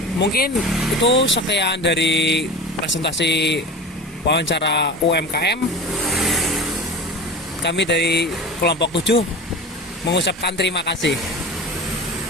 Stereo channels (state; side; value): normal; both; correlation 0.32